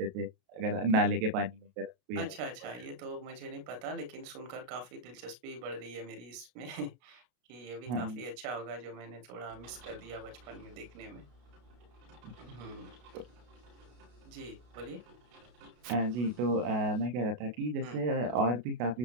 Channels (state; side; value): late; left; 33 ms